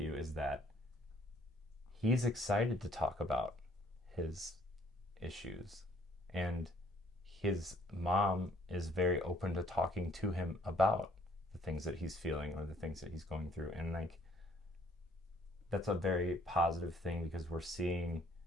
is that he's excited to talk about his issues, and his mom is very open to talking to him about the things that he's feeling or the things that he's going through. And like, that's a very positive thing, because we're seeing,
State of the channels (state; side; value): normal; both; correlation 0.62